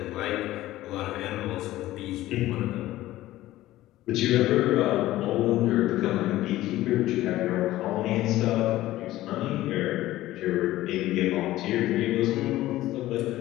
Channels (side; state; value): right; quieter; 15.7 dB